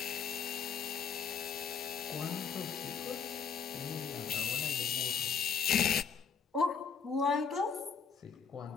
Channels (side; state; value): right; quieter; 6.5 dB